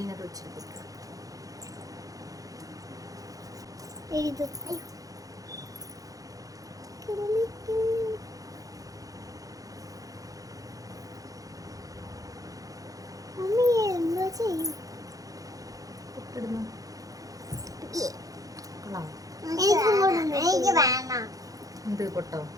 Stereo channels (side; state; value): left; late; 0.17 ms